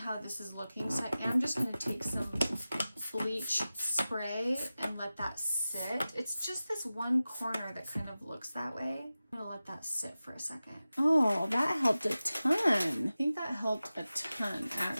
this is looking, so I am just gonna take some bleach spray and let that sit. It's just this one corner that kind of looks that way. I'm gonna let that sit for a second. Oh, that helped a ton. I think that helped a ton,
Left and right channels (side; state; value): both; inverted; correlation -0.95